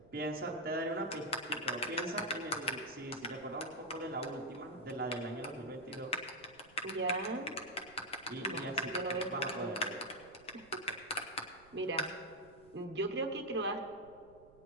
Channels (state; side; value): noise; right; rumble, 25 dB below the sound